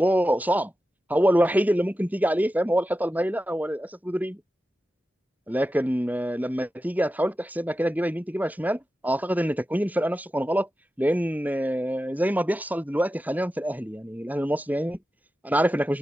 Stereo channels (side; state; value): both; normal; correlation 0.92